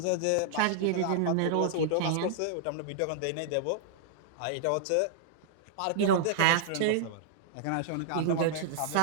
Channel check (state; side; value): different; both; correlation -0.01